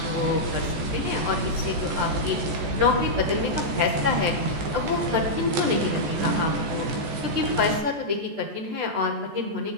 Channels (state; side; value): late; left; 14 ms